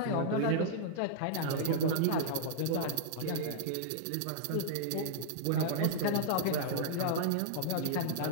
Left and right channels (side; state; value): both; different; correlation -0.01